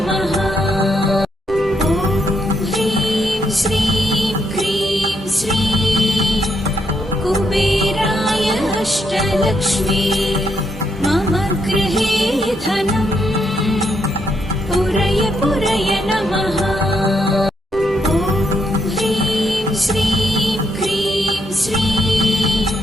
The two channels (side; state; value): both; normal; correlation 0.77